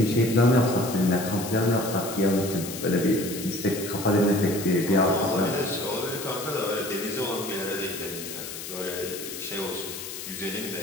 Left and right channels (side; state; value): left; noise; hiss, 9 dB below the sound